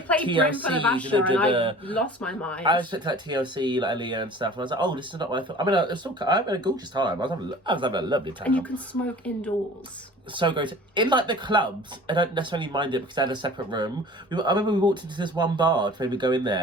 TLC, Brim for the Basher and I the- lost my mind. I was expecting like TLC, like Aaliyah and stuff, and I was like, oh, this is not what I thought. I mean, I had a gorgeous time. I was having a lovely time. And you can smoke indoors. So great. In like the clubs, I don't necessarily mind it because they had a separate room. I remember we walked into this one bar to maybe go in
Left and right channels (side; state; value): both; normal; correlation 0.44